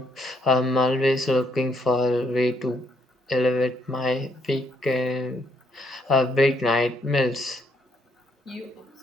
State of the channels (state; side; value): normal; both; correlation 0.73